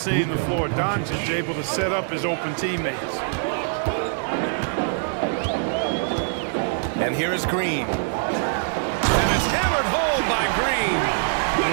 the floor. Doncic able to set up his open teammates. And here is Green. And it's hammered home by Green.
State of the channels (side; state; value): left; silent; 63 dB below the other